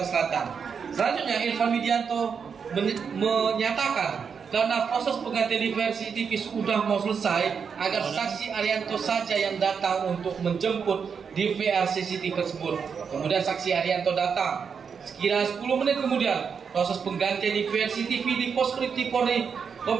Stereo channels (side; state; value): left; quieter; 6.4 dB